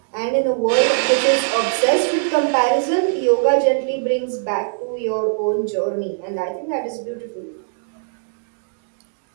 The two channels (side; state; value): left; silent; digital silence